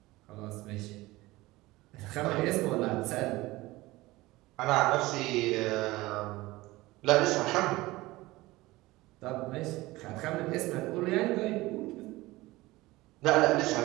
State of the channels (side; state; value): left; quieter; 19.5 dB